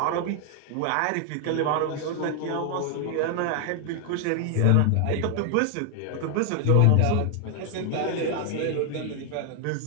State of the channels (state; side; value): different; both; correlation 0.00